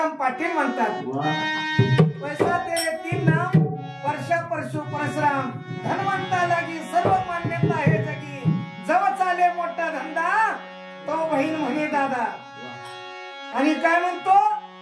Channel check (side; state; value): both; identical; correlation 1.00